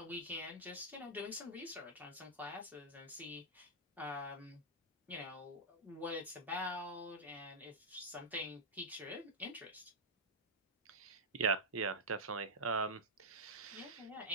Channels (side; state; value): both; normal; correlation -0.07